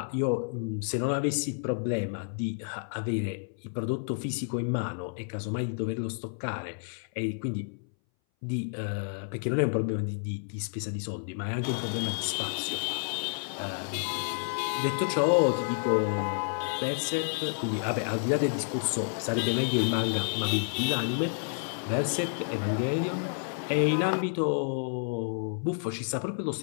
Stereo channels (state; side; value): silent; right; 58 dB below the other